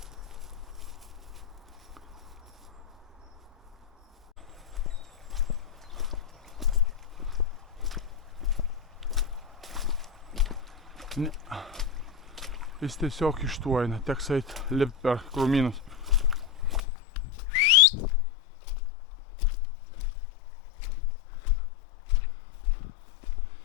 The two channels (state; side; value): drops out; right; at 16.8 s